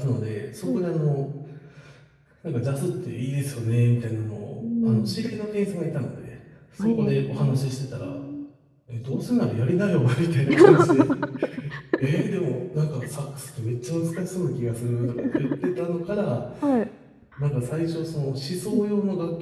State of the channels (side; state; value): both; identical; correlation 1.00